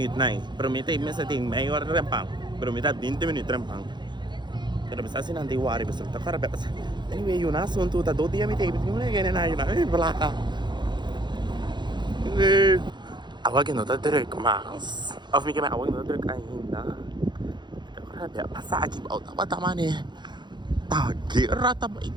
né? Pero me tem maior rempang. Pero me tá 20 minutos rempang. Pero me está assim não tem worry, mas tá cara bem. Anyway, yun na assunto, tá 2 dias me tem, não é ganhar nada, yun na, blá. Awag no ta direct mas. Of me kaya awag no direct ainda. Grabe, pasagi ba tama ni. Tagira ta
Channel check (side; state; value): left; late; 0.22 ms